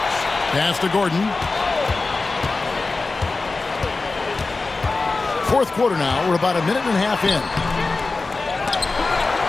Pass to Gordon. Fourth quarter now. We're about a minute and a half in.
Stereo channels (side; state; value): right; quieter; 3.7 dB